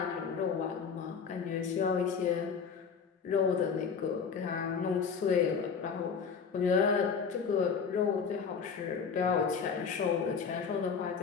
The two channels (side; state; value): right; quieter; 6.0 dB